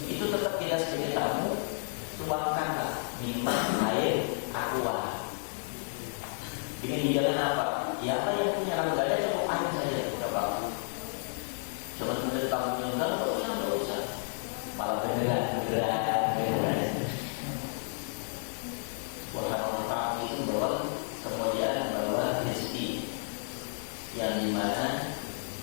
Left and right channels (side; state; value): right; silent; 57 dB below the other